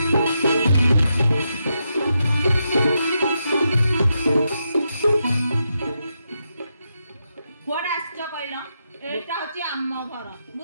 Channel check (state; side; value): inverted; both; correlation -0.84